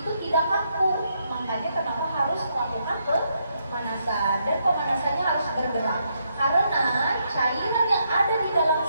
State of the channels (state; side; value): inverted; both; correlation -0.77